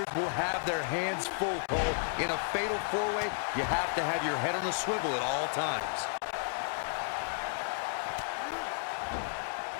will have their hands full, Cole. In a fatal 4-way, you have to have your head on a swivel at all times.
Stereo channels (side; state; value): right; silent; digital silence